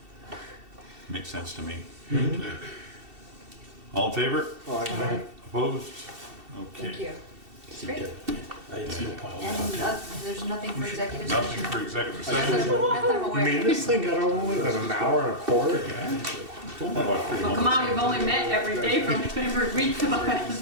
Makes sense to me. All in favor? Right. Opposed? Thank Okay. you. It's great. I had some pile And of there's nothing for executive session. Nothing for executive Not session? that I'm You aware mean of. this thing got over with in an hour and a quarter? Well, come on, we've only met every day for every week for the last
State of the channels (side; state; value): left; late; 2.7 ms